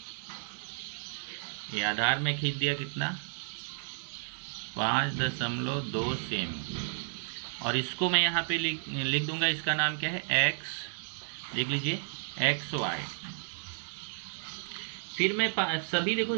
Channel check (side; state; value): left; silent; digital silence